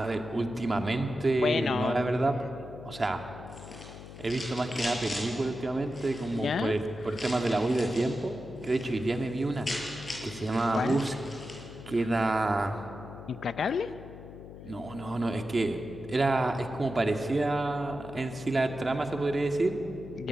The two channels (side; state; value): left; noise; hum, 14 dB below the sound